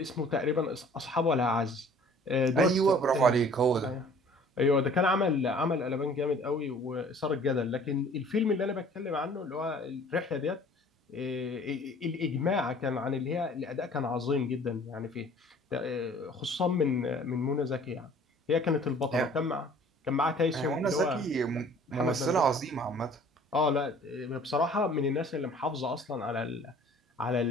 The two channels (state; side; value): normal; both; correlation 0.51